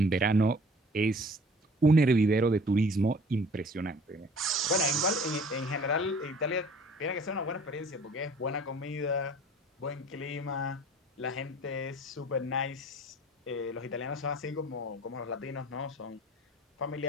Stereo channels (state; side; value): normal; both; correlation 0.49